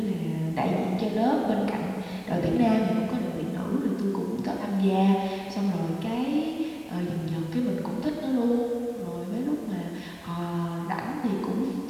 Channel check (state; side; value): identical; both; correlation 1.00